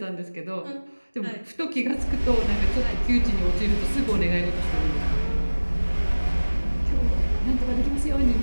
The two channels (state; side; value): inverted; both; correlation -1.00